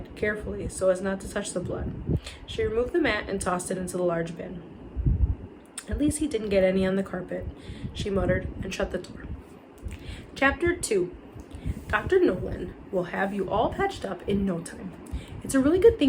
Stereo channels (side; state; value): both; identical; correlation 1.00